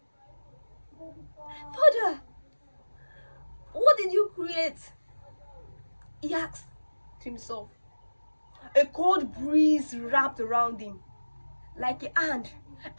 "Father, what did you create?" he asked himself. A cold breeze wrapped around him, like a hand,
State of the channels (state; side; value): inverted; both; correlation -1.00